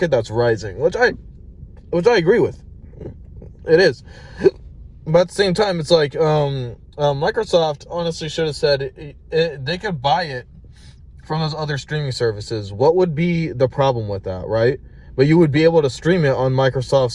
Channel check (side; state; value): both; identical; correlation 1.00